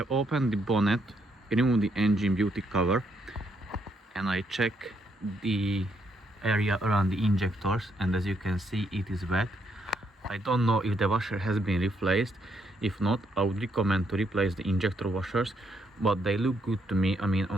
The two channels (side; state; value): both; normal; correlation 0.74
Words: opened the bonnet, removed the engine beauty cover, and I check the area around the injectors, and as you can see it is wet. I don't know if the washer has been replaced. If not, I would recommend to replace the injector washers, but they look good to me. I mean,